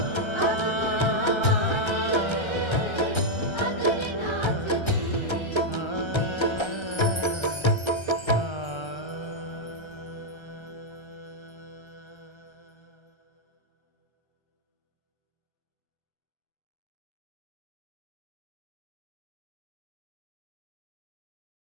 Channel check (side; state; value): right; late; 1.3 ms